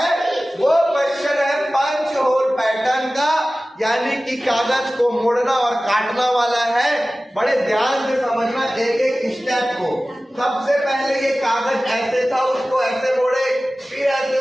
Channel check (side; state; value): both; normal; correlation 0.97